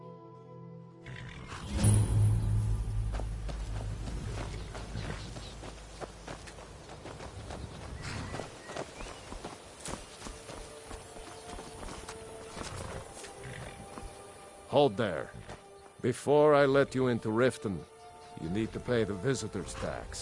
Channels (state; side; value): identical; both; correlation 1.00